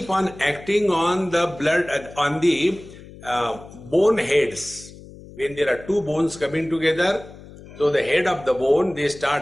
on acting on the blood, on the bone heads. When there are two bones coming together, so the head of the bone, they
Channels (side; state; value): left; noise; hum, 18 dB below the sound